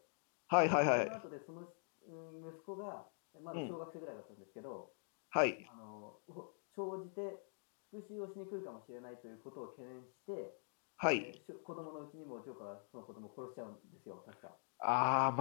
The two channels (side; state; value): right; silent; digital silence